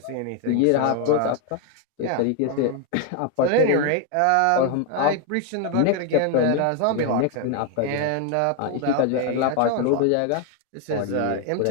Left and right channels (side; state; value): both; different; correlation 0.01